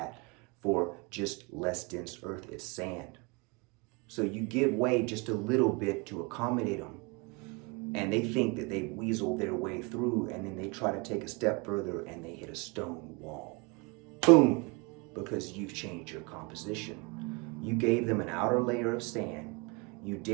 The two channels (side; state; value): left; quieter; 29.6 dB